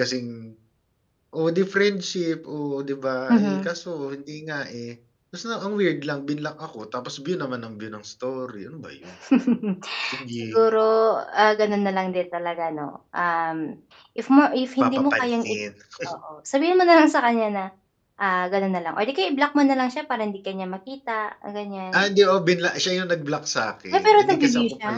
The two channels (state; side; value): identical; both; correlation 1.00